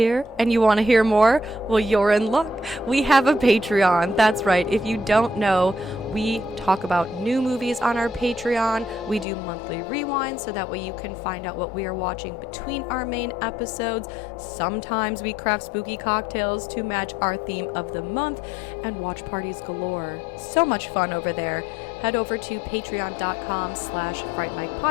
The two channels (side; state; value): right; drops out; at 9.2 s